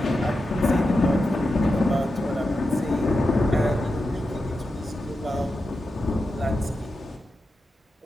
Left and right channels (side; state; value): both; normal; correlation 0.90